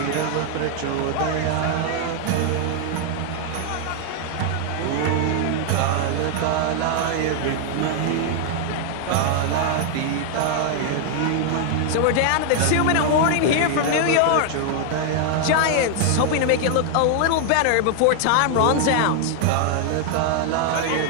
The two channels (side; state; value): both; different; correlation 0.00